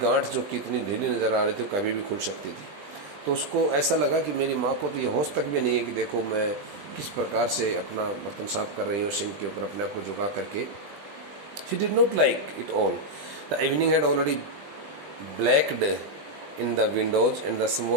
जो कितनी ढीली नज़र आ रही थी, कभी भी खुल सकती थी. तो उसको ऐसा लगा कि मेरी माँ को तो ये होश तक भी नहीं है कि देखो मैं किस प्रकार से अपना बर्तन साफ कर रही हो सिंक के ऊपर अपने आप को झुका करके. She did not like it all. The evening had already blacked in the windows and the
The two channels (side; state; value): left; late; 20 ms